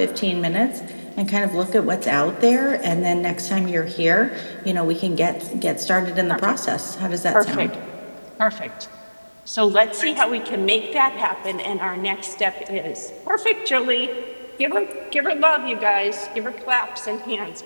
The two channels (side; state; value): both; inverted; correlation -1.00